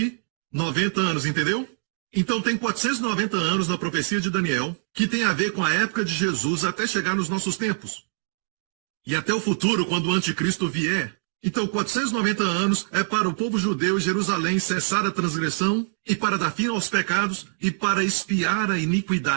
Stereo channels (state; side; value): silent; left; digital silence